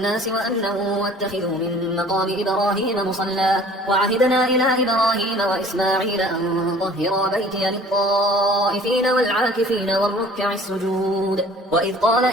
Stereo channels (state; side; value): normal; both; correlation 0.50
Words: وأمنا واتخذوا من مقام إبراهيم مصلى وعهدنا إلى إبراهيم وإسماعيل أن طهرا بيتي للطائفين والعاكفين والركع السجود. وإذ قال